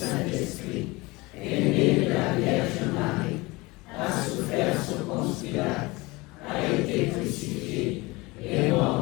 est né de la Vierge Marie, a souffert sous Ponce Pilate, a été crucifié, est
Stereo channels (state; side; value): quieter; right; 23.2 dB